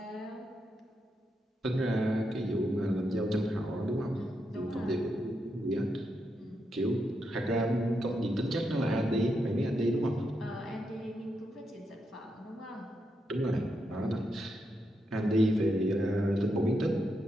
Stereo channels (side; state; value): both; normal; correlation 0.83